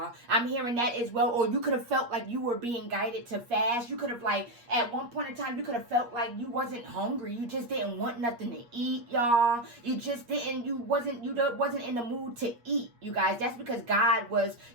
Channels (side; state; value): left; late; 8.4 ms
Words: I'm hearing that as well. Or you could have felt like you were being guided to fast. You could have, like, at one point in time, you could have felt like you wasn't hungry. You just didn't want nothing to eat, y'all. You just didn't, you wasn't in the mood to eat, you guys. That's because God was,